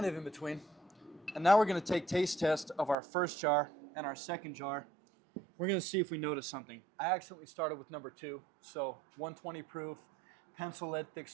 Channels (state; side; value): drops out; left; at 3.0 s